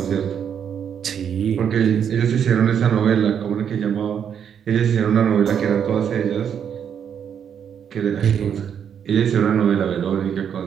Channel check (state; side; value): quieter; left; 8.2 dB